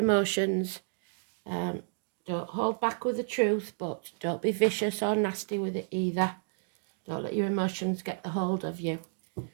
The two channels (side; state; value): left; silent; digital silence